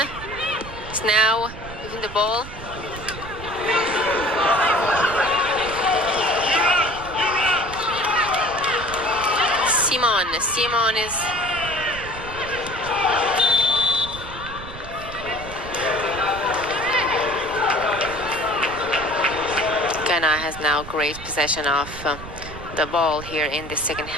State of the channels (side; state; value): right; noise; rumble, 13 dB below the sound